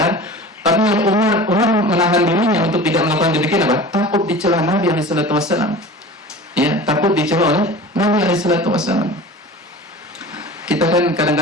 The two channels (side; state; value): both; normal; correlation 0.37